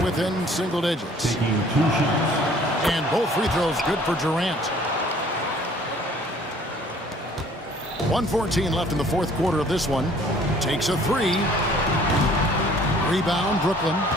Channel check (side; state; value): both; normal; correlation 0.55